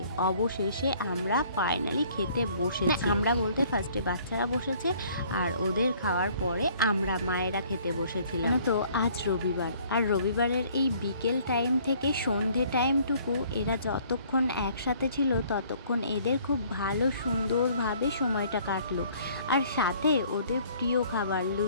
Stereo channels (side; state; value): both; inverted; correlation -0.58